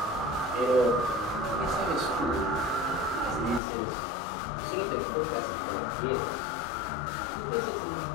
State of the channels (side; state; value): right; drops out; at 3.6 s